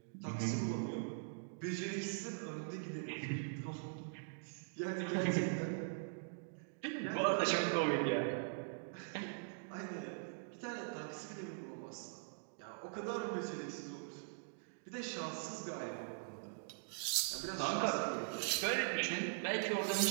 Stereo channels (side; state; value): left; silent; digital silence